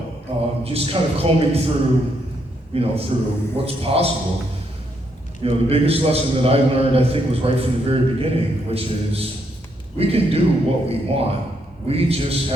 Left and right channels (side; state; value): both; normal; correlation 0.76